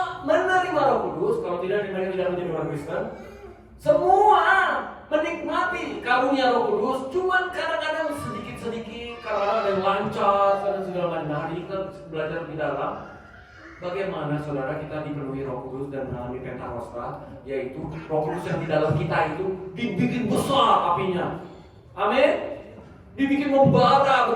menerima Roh Kudus. Kalau tidak, mereka tidak menjadi orang Kristen. Semua menikmati karunia Roh Kudus. Cuman kadang-kadang sedikit-sedikit, kadang-kadang ada yang lancar, kadang segala macam. Nah, hari kita belajar lebih dalam bagaimana saudara kita dipenuhi Roh Kudus dan mengalami Pentakosta, yaitu Roh Kudus yang di dalam kita itu dibikin besar apinya. Amin. Dibikin membara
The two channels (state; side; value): identical; both; correlation 1.00